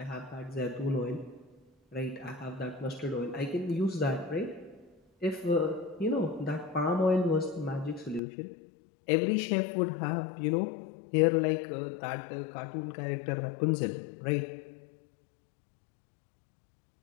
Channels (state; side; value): drops out; right; at 8.2 s